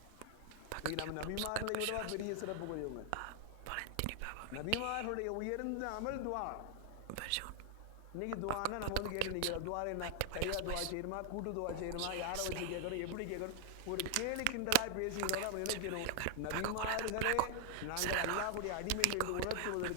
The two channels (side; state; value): both; different; correlation 0.00